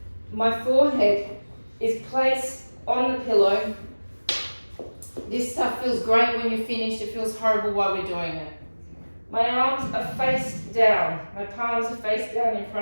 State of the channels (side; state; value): both; inverted; correlation -1.00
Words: My forehead is placed on the pillow. This stuff feels great when you're finished. It feels horrible while we're doing it. My arms are face down. My palms are face down in